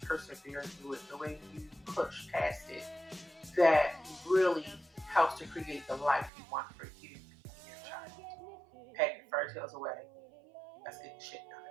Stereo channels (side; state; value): left; drops out; at 6.3 s